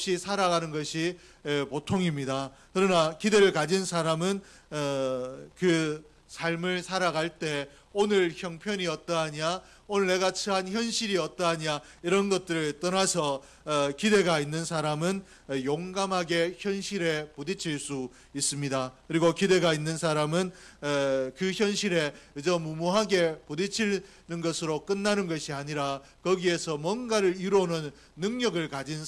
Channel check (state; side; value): identical; both; correlation 1.00